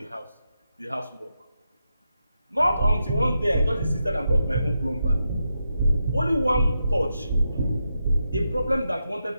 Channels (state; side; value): inverted; both; correlation -0.86